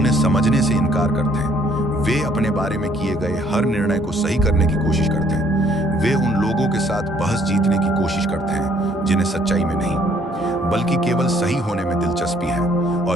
समझने से इनकार करते हैं। वे अपने बारे में किए गए हर निर्णय को सही करने की कोशिश करते हैं। वे उन लोगों के साथ बहस जीतने की कोशिश करते हैं जिन्हें सच्चाई में नहीं, बल्कि केवल सही होने में दिलचस्पी है,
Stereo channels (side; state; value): both; normal; correlation 0.64